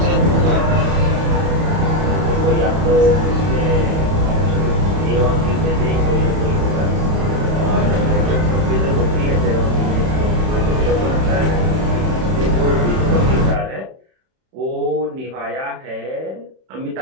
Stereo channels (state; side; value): late; left; 31 ms